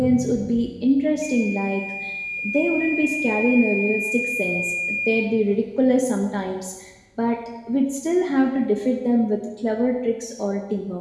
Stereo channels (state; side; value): identical; both; correlation 1.00